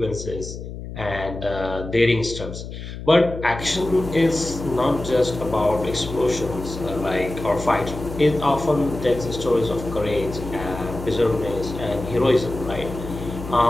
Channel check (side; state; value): left; noise; hum, 10 dB below the sound